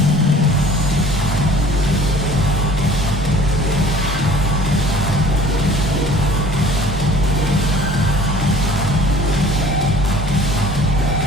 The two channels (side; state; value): both; normal; correlation 0.50